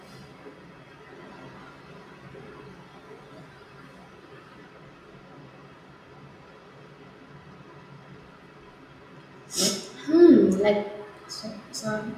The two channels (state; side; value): identical; both; correlation 1.00